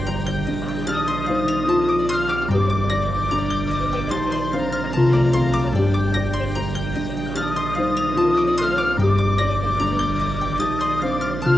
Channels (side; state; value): right; noise; hum, 6 dB below the sound